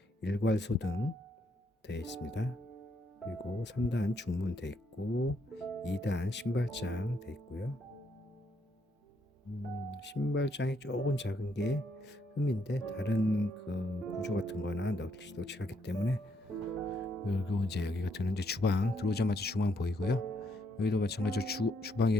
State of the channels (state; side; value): normal; both; correlation 0.74